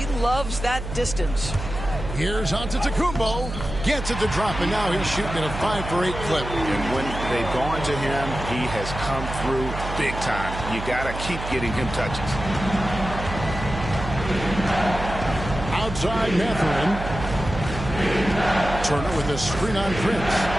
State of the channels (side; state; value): right; noise; hum, 8 dB below the sound